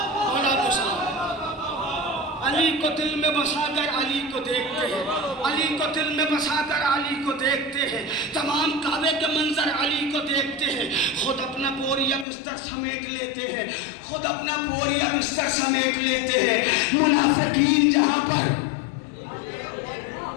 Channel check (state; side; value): drops out; right; at 12.2 s